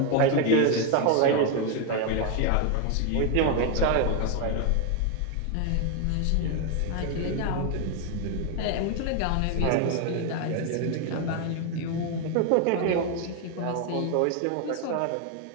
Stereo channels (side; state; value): both; different; correlation 0.01